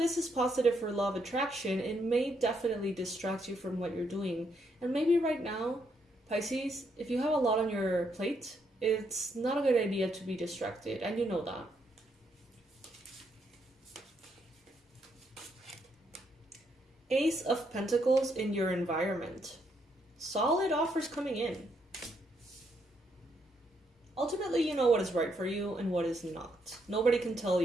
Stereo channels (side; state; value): both; normal; correlation 0.76